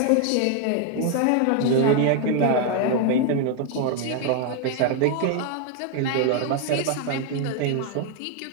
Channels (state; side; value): different; both; correlation 0.01